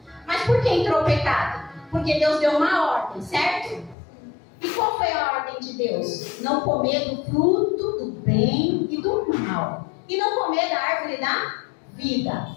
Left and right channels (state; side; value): drops out; right; at 4.0 s